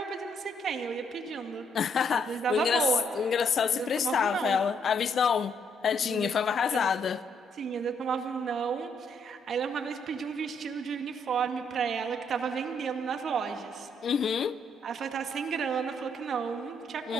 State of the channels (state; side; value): normal; both; correlation 0.72